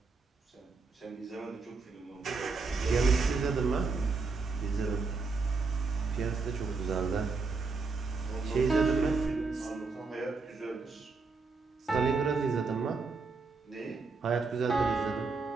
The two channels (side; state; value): left; quieter; 4.2 dB